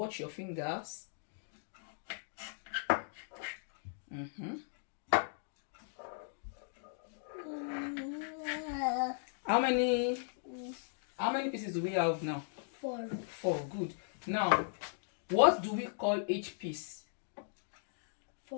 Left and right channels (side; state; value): right; silent; digital silence